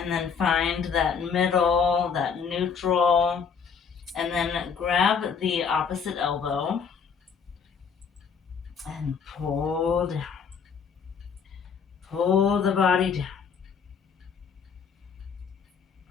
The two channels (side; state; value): right; quieter; 6.3 dB